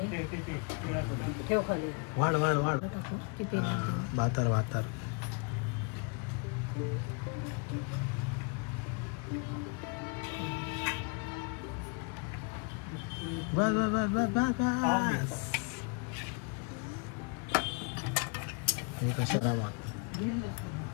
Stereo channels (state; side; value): quieter; right; 33.1 dB